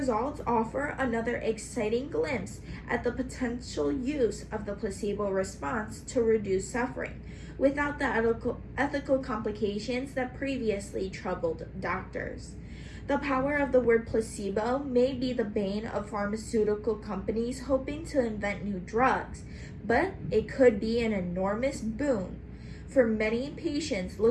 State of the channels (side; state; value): both; identical; correlation 1.00